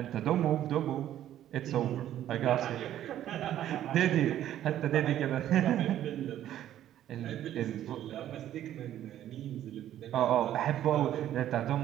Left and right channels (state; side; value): quieter; left; 11.9 dB